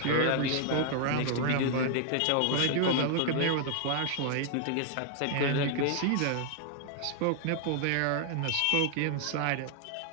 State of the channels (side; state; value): both; different; correlation 0.00